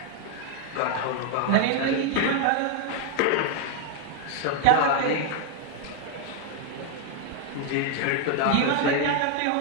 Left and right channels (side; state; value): both; different; correlation 0.01